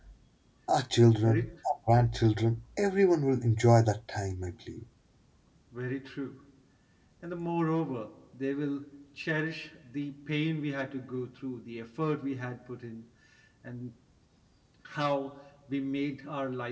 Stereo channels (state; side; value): identical; both; correlation 1.00